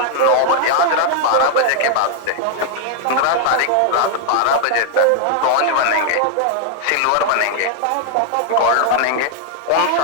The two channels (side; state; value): both; different; correlation 0.00